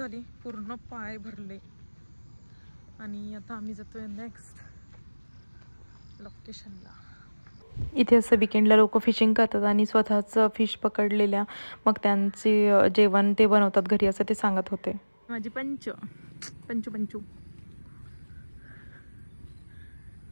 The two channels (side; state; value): both; inverted; correlation -1.00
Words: पूर्ण पाय भरले. आणि आता आम्ही जातोय नेक्स्ट लोकेशनला. इथे असं विकेंडला लोक फिशिंग करतात आणि स्वतःच फिश पकडलेल्या मग त्यांचे जेवण ते बनवतात घरी, असं ते सांगत होते. माझी पंचू पंचू पंचू